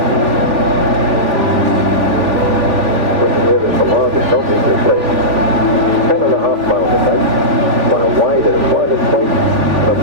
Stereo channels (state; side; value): late; left; 3.5 ms